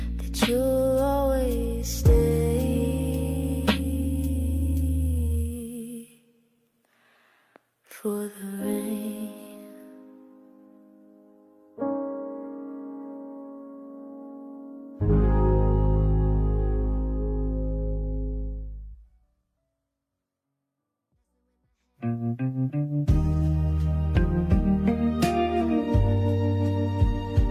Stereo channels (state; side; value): identical; both; correlation 1.00